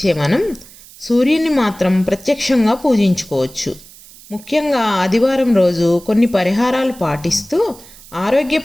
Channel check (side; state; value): right; noise; hiss, 21 dB below the sound